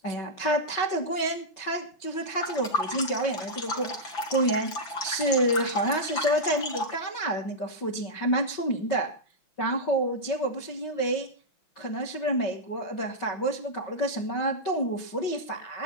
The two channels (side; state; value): right; late; 5.9 ms